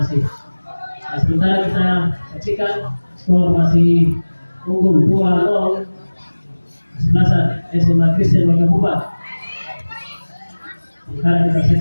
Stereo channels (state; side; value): inverted; both; correlation -1.00